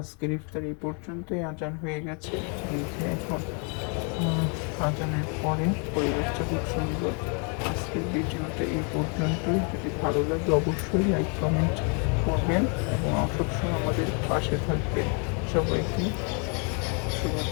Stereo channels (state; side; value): quieter; right; 37.4 dB